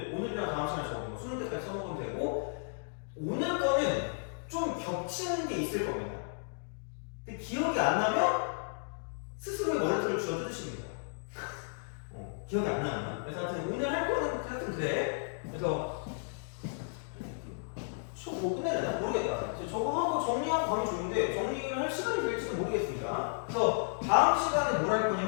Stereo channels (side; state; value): right; silent; digital silence